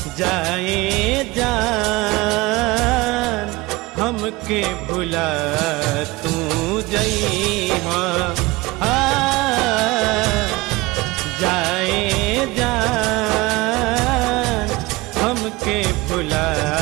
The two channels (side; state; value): left; quieter; 21.6 dB